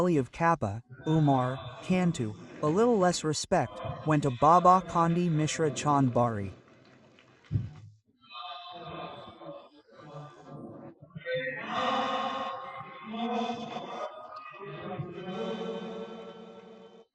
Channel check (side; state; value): both; identical; correlation 1.00